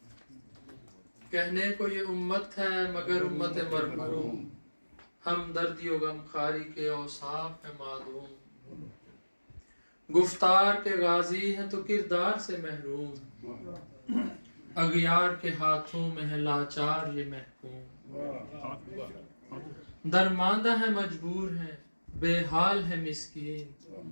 کہنے کو یہ امت ہے مگر امت مرحوم، ہمدردی و غمخواری کے اوصاف ہے معدوم. گفتار کے غازی ہیں تو کردار سے محروم، اغیار کے ہاتھوں میں ہے لاچار یہ محکوم. درماندہ ہے مجبور ہے بے حال ہے مسکین،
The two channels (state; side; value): inverted; both; correlation -1.00